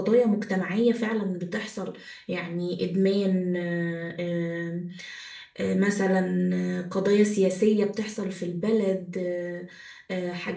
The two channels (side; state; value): both; identical; correlation 1.00